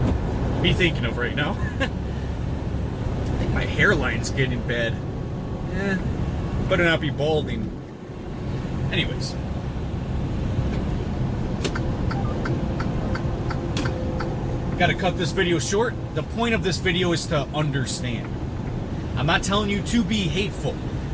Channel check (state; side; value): identical; both; correlation 1.00